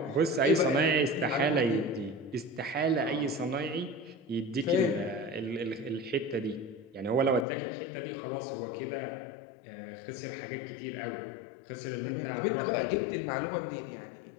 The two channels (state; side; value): drops out; right; at 7.5 s